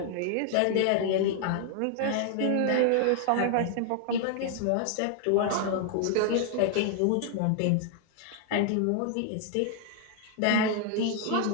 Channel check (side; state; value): both; different; correlation 0.00